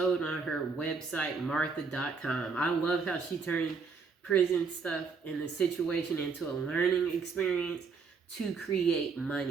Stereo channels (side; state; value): left; quieter; 5.1 dB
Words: on her website martha.com. I love how she turned prison stuff and the situation into a learning experience to create